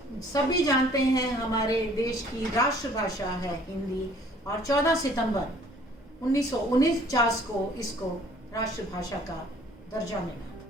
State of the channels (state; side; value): normal; both; correlation 0.56